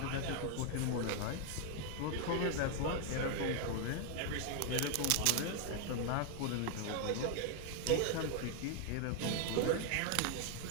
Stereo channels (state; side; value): different; both; correlation 0.00